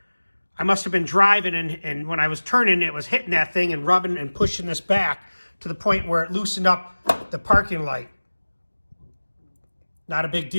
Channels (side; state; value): both; inverted; correlation -1.00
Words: I must have been driving, and when I was turning, it was hitting that thing and rubbing and pushing this back to the point where it loosened up the parking light. Not a big